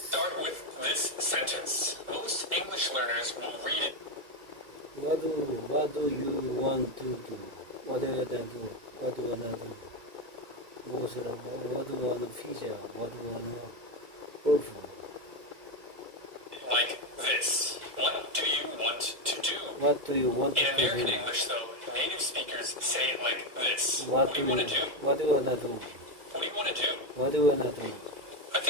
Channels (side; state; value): left; late; 2.3 ms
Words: start with this sentence. Most English learners will read it. What do you want to do? What do you wanna do? What do you wanna do? What do you wanna pizza? What do you wanna waffle? Like this. What do you want to do? What do you want In to American do? English, though, native speakers say it like this. What do you want to do? What do you wanna do? What do you want to do? What do you wanna do? I